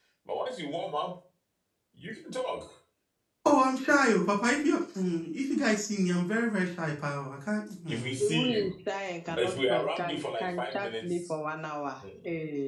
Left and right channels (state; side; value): identical; both; correlation 1.00